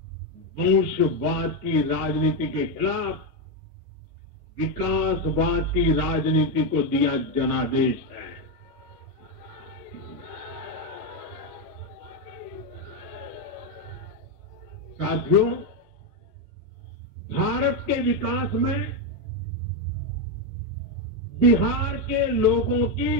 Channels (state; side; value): normal; both; correlation 0.06